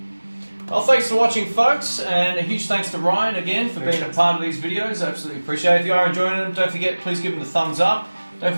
Well, thanks for watching, folks, and a huge thanks to Ryan again for being a part of these videos. Absolutely appreciate it. If you are enjoying them, don't forget, please give them the thumbs up. Don't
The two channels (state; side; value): inverted; both; correlation -1.00